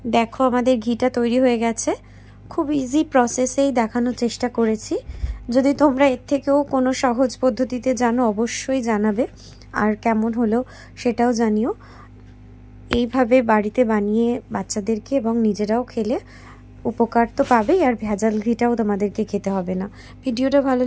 দেখো আমাদের ঘিটা তৈরি হয়ে গেছে। খুব ইজি প্রসেসেই দেখানোর চেষ্টা করেছি। যদি তোমরা এর থেকেও কোনো সহজ পদ্ধতিতে জানো অবশ্যই জানাবে, আর কেমন হলো সেটাও জানিও। এইভাবে বাড়িতে বানিয়ে বাচ্চাদেরকে এবং নিজেরাও খেলে উপকার তো পাবেই, আর ভেজাল ঘিটাও তোমাদেরকে খেতে হবে না। ভিডিওটা ভালো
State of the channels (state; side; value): identical; both; correlation 1.00